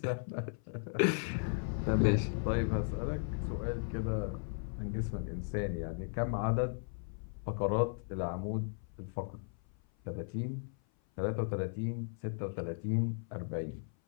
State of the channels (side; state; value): right; silent; 54 dB below the other